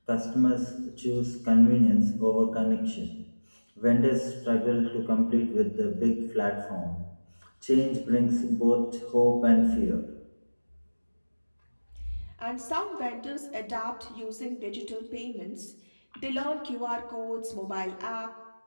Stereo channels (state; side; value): inverted; both; correlation -1.00